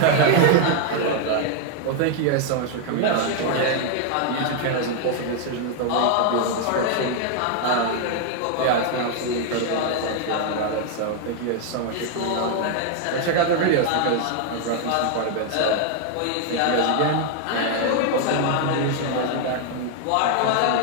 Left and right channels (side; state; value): both; different; correlation 0.00